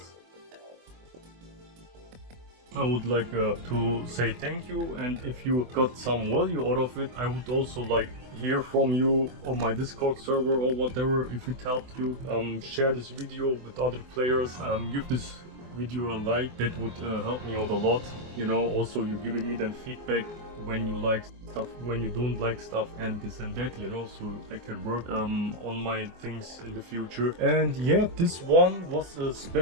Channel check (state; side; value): late; left; 24 ms